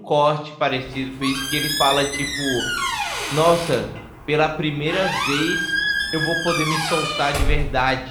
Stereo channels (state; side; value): identical; both; correlation 1.00